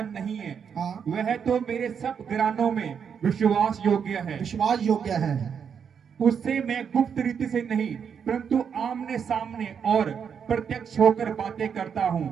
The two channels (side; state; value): left; quieter; 7.1 dB